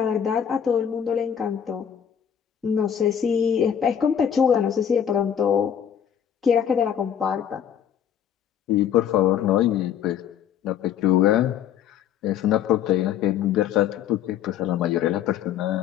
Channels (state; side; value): quieter; right; 9.0 dB